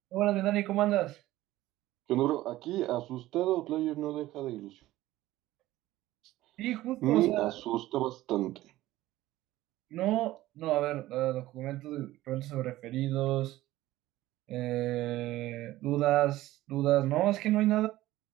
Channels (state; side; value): quieter; left; 16.2 dB